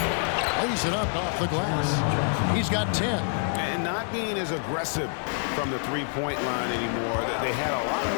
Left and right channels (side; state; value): right; silent; 60 dB below the other